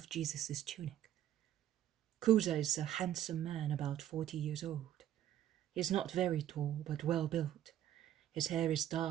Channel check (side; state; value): left; quieter; 11.7 dB